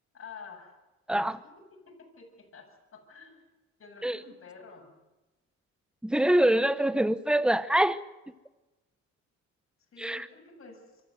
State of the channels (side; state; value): both; normal; correlation 0.94